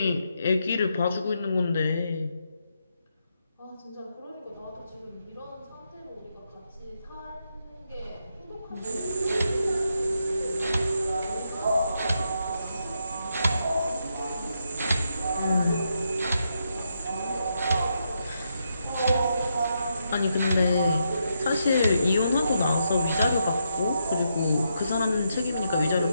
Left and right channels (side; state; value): both; inverted; correlation -0.81